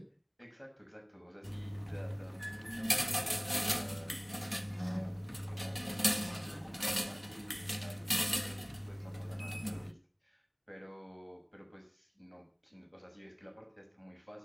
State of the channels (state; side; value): identical; both; correlation 1.00